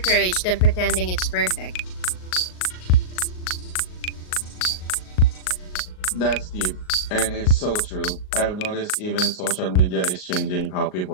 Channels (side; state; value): right; late; 38 ms